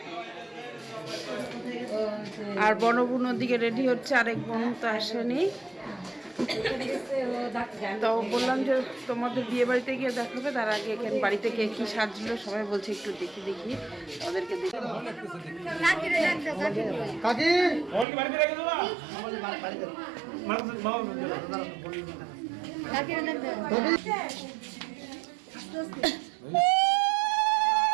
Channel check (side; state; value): left; drops out; at 18.1 s